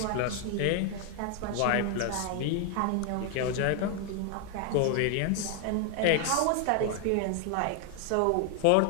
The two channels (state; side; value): different; both; correlation 0.01